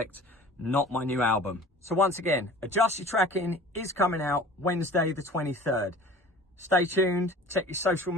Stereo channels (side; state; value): both; normal; correlation 0.44